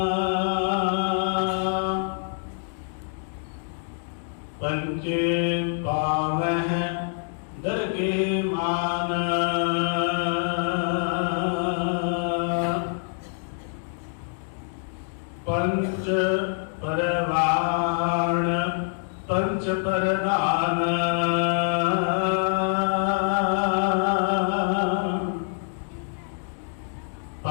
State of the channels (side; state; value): right; silent; digital silence